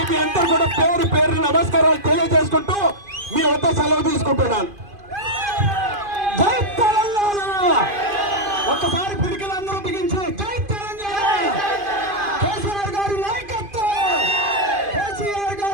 మీ అందరూ కూడా పేరు నమస్కారాలు తెలియజేసుకుంటూ మీ వద్ద సెలవు తీసుకుంటున్నాను. జై తెలంగాణ! ఒక్కసారి పిడికలందరూ బిగించి జై తెలంగాణ! కేసీఆర్ గారి నాయకత్వం, కేసీఆర్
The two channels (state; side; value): late; left; 2.5 ms